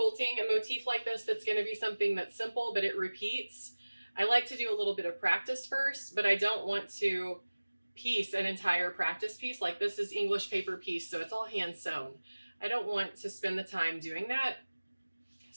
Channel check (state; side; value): inverted; both; correlation -1.00